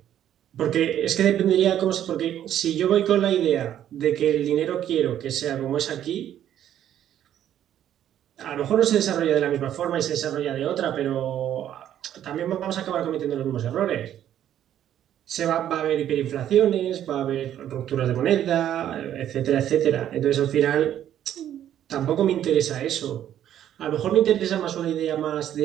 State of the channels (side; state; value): left; quieter; 10.9 dB